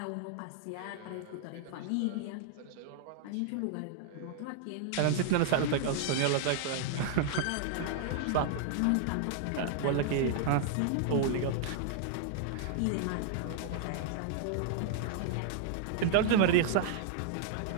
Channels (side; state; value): both; different; correlation -0.01